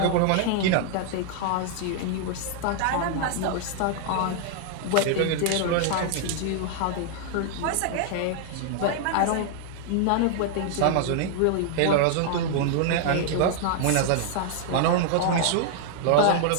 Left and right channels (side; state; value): both; different; correlation 0.00